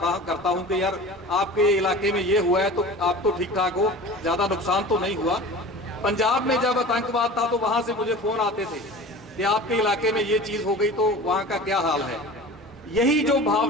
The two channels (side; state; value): both; normal; correlation 0.37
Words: हूं कि यार आपके इलाके में ये हुआ है तो आप तो ठीक ठाक हो, ज्यादा नुकसान तो नहीं हुआ। पंजाब में जब आतंकवाद था तो वहां से मुझे फोन आते थे कि आपके इलाके में ये चीज हो गई तो वहां का क्या हाल है। यही जो